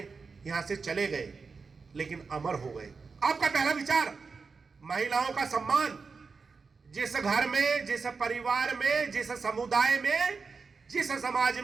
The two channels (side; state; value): left; quieter; 4.8 dB